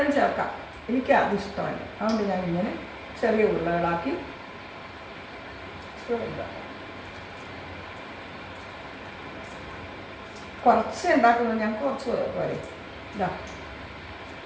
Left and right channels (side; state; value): both; identical; correlation 1.00